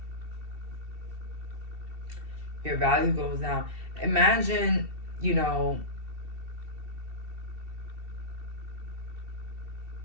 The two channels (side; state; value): left; late; 2.7 ms